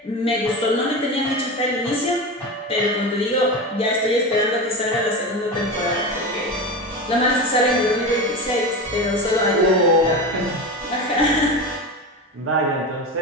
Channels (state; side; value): normal; both; correlation 0.24